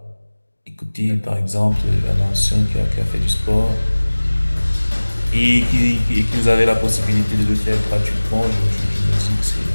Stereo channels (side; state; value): both; inverted; correlation -1.00